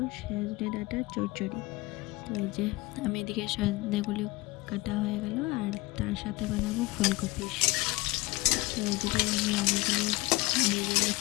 সজনে ডাঁটার চচ্চড়ি। তো এই যে আমি এদিকে সজনেগুলি কাটা হয়ে গেল, আর তার সাথে বানাবো ফুলকপি। তো এদিকে আমি আলুগুলো ভেজে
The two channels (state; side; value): quieter; right; 21.9 dB